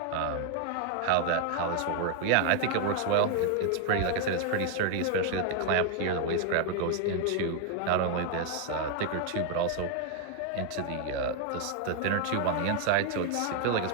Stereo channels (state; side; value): different; both; correlation 0.00